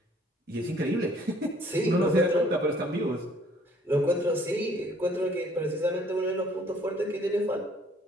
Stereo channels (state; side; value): normal; both; correlation 0.59